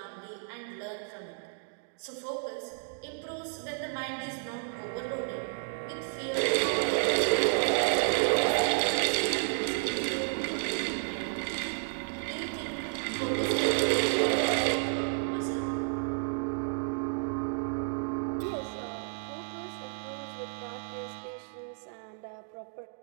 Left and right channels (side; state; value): left; silent; digital silence